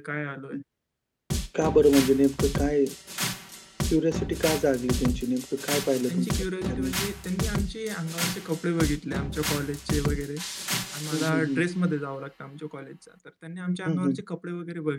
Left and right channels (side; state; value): both; identical; correlation 1.00